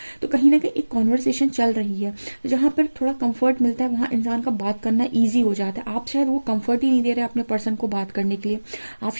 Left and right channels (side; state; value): both; inverted; correlation -1.00